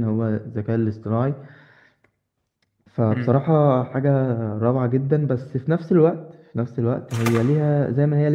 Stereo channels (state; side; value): identical; both; correlation 1.00